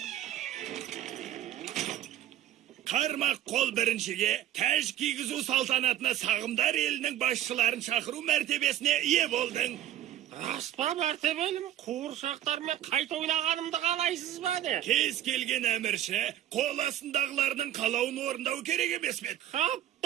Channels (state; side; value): quieter; left; 12.1 dB